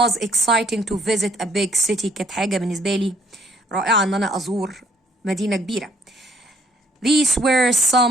exciting to visit a big city، كانت حاجة بالنسبة لي رائعة ان انا ازور مدينة كبيرة. these were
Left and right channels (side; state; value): both; normal; correlation 0.65